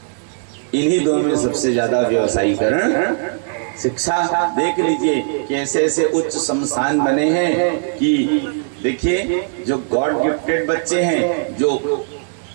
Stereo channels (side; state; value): left; silent; digital silence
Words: इन्हीं दो में सबसे ज्यादा व्यवसायीकरण। शिक्षा देख लीजिए कि ऐसे ऐसे उच्च संस्थान बने हैं कि देखिए, जो गॉड गिफ्टेड बच्चे हैं, जो